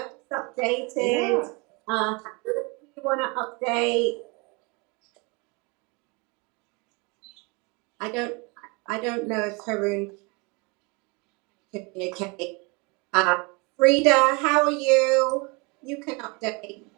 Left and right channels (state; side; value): quieter; left; 29.1 dB